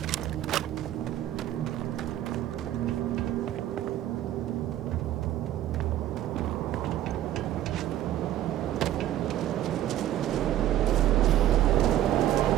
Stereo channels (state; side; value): quieter; left; 12.7 dB